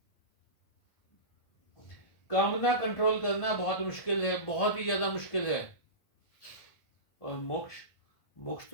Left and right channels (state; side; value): late; right; 1.3 ms